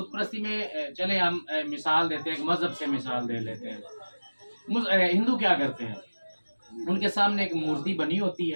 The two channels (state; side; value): inverted; both; correlation -1.00